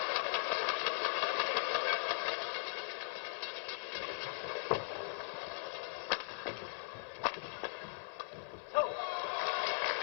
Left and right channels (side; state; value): right; silent; 51 dB below the other